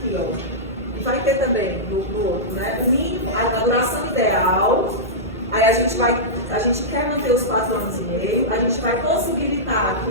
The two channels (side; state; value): right; noise; hum, 15 dB below the sound